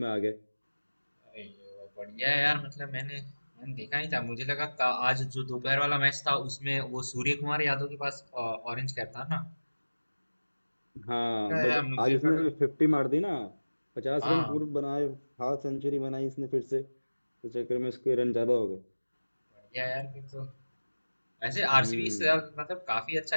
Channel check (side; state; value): both; inverted; correlation -1.00